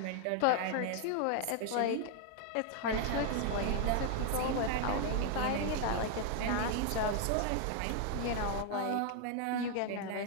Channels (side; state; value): both; different; correlation 0.00